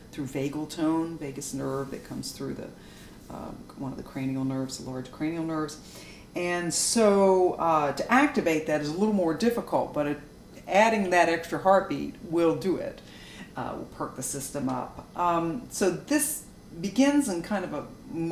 through vagal tone, vagus nerve that comes through one of the cranial nerves, the large cranial nerves. And so to activate that is a little more difficult, but adding that extra heartbeat will do it. Will perk the system up. So this begins in kind of a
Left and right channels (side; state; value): both; identical; correlation 1.00